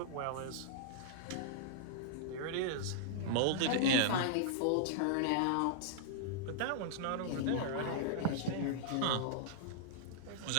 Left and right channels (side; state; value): both; different; correlation -0.01